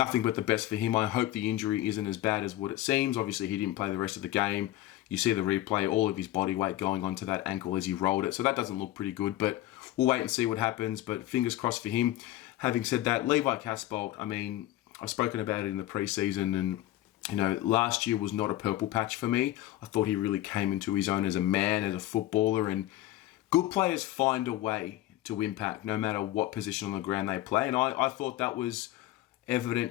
but the best for him. I hope the injury isn't as bad as what it seems. Obviously, he didn't play the rest of the game. You see the replay, all of his body weight going onto that ankle as he rolled it, so that doesn't look pretty good, but we'll wait and see what happens, but fingers crossed for him. Having said that, Levi Casbolt, I've spoken about it in the preseason, and last year was not a purple patch for me. I thought he really came into his own as a man, as a footballer, and good players find a way to impact no matter what position on the ground they play, and I thought that was evident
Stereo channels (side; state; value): right; quieter; 15.1 dB